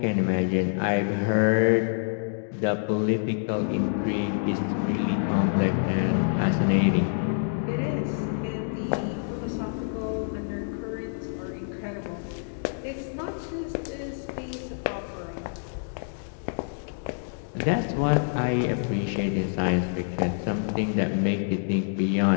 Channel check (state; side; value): silent; right; digital silence